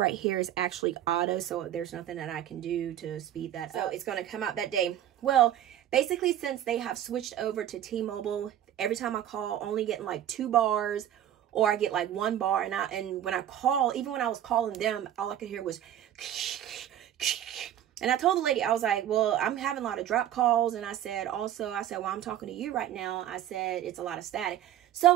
here is actually auto, so there's nothing that I can do to speed that up. So it's going to come out that day. Well, basically, since they have switched over to T-Mobile, every time I call, only getting like 2 bars, or I get like 1 bar, and when I call, even when I was calling them, all I could hear was and I told the lady, I was like, well, I'm having a lot of drop calls. And I said, well, I'm talking to you right now. I said, it's a lot of static.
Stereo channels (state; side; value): quieter; left; 11.3 dB